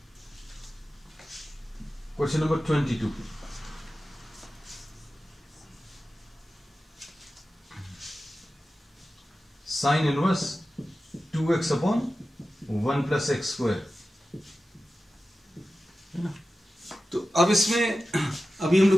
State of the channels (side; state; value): both; normal; correlation 0.94